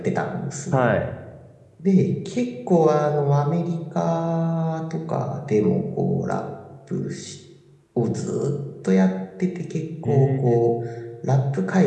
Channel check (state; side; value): identical; both; correlation 1.00